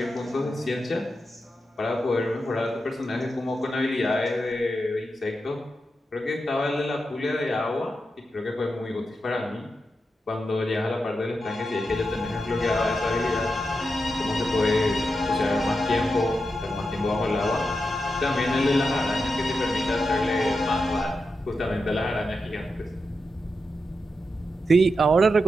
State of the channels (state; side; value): normal; both; correlation 0.88